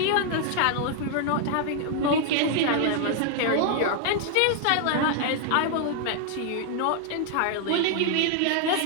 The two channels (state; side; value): different; both; correlation 0.00